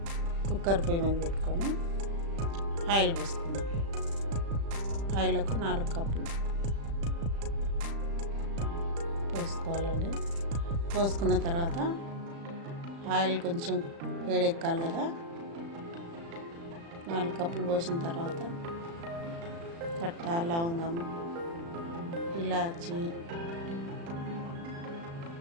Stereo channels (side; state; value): left; late; 35 ms